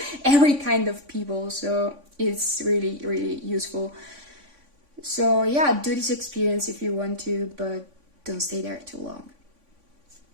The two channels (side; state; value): left; late; 3.5 ms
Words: every kind of people. So it's really, really useful. So yeah, do this experience if you want to, but don't stay there too long.